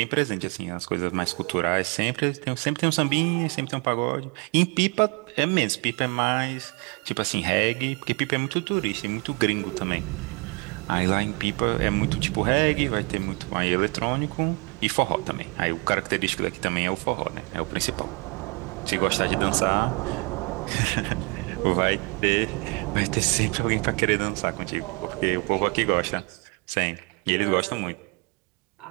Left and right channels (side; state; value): left; quieter; 30.9 dB